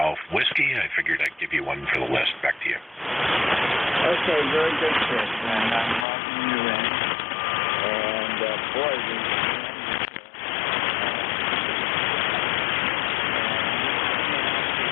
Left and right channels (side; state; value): right; drops out; at 6.1 s